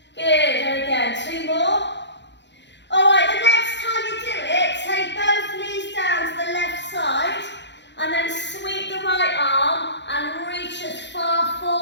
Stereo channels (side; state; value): right; late; 0.52 ms